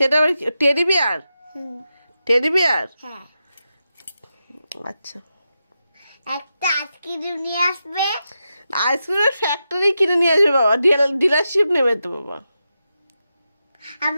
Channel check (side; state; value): both; inverted; correlation -0.88